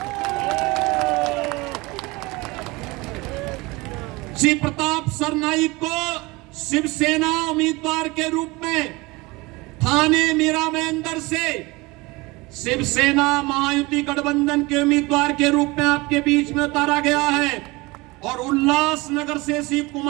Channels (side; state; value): left; quieter; 23.4 dB